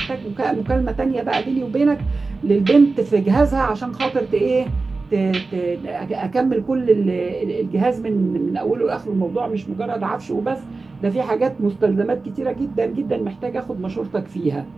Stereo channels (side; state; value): left; quieter; 3.8 dB